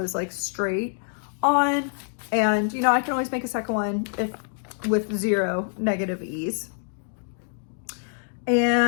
like straight on. And you know, I can always make a second one if with 0 negative ease.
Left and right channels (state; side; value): silent; right; digital silence